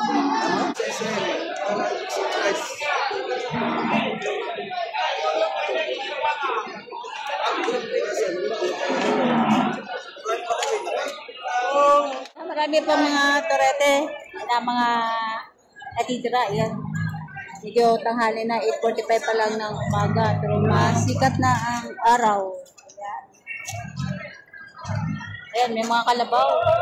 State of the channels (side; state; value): both; identical; correlation 1.00